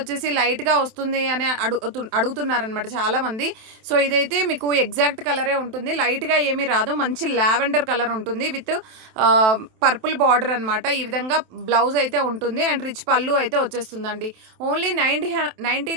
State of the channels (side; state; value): left; late; 27 ms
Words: లైట్గా వస్తుంది అని అడుగుతున్నారనమాట చాలామంది. సో ఇదైతే మీకు ఎగ్జాక్ట్ కలరే ఉంటుంది, లైట్గా ఏమీ రాదు. మంచి లావెండర్ కలర్ ఉంటుంది విత్ పర్పుల్ బార్డర్ అనమాట. ఈ విధంగా బ్లౌజ్ అయితే ఉంటుంది అండ్ రిచ్ పళ్ళు అయితే వచ్చేస్తుందండి. ఓన్లీ